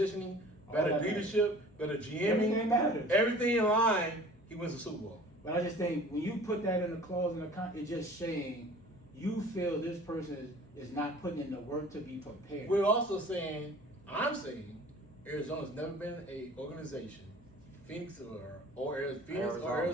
All better that leadership, better GMing. Everything matters. Everything in line. He wins the Super Bowl. But I just think when you put that in a clause in the contract, it's just saying you feel this person is not putting in the work to be prepared. We're also saying, I'm saying, Arizona's never been a organization, Phoenix or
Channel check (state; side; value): noise; left; hum, 27 dB below the sound